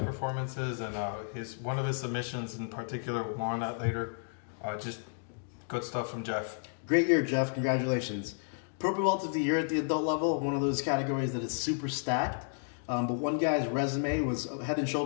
and one of his submissions in particular, we'll more on that later. Just good stuff from Jeff. Great year, Jeff. Congratulations. Purple Belt of the Year at the adult level, one of those categories that is super stacked. But one guy's resume was head and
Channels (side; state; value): right; silent; digital silence